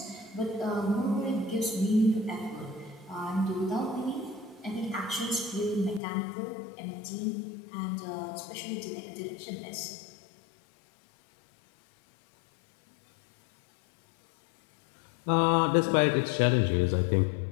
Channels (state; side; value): drops out; right; at 6.0 s